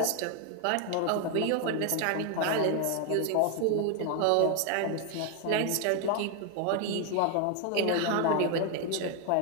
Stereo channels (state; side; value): different; both; correlation 0.01